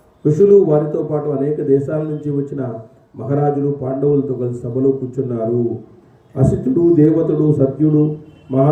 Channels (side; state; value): both; identical; correlation 1.00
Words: ఋషులు వారితో పాటు అనేక దేశాల నుంచి వచ్చిన మహారాజులు పాండవులతో కలిసి సభలో కూర్చున్నారు. అసితుడు, దేవతుడు, సత్యుడు,